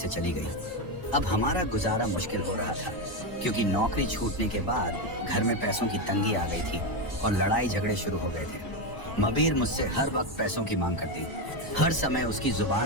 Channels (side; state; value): right; late; 1.0 ms